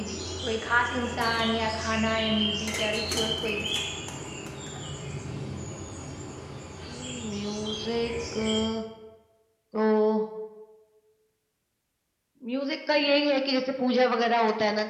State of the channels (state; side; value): identical; both; correlation 1.00